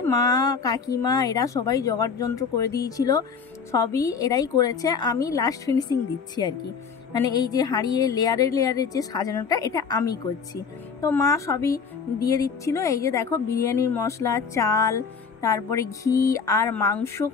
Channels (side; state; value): right; quieter; 5.9 dB